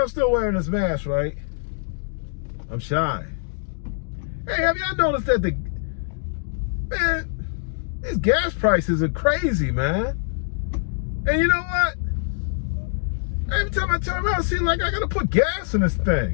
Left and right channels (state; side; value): silent; right; digital silence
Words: still wearing this mask, right? I'm shy. Hey, have y'all noticed that these gas prices are crazy, man? And you know what? Every time I turn around, it seems like I gotta put gas in this